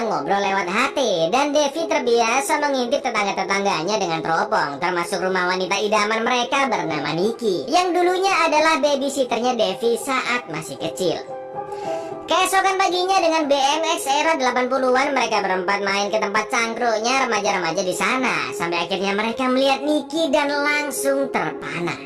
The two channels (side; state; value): both; identical; correlation 1.00